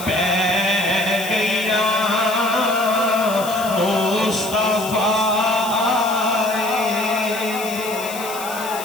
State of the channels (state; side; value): noise; left; hiss, 11 dB below the sound